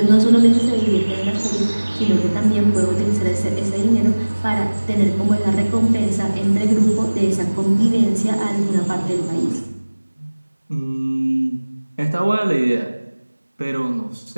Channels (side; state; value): both; inverted; correlation -1.00